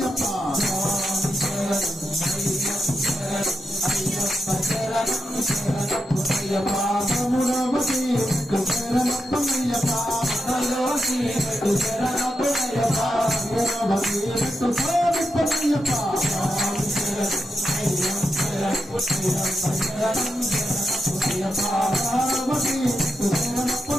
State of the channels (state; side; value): normal; both; correlation 0.87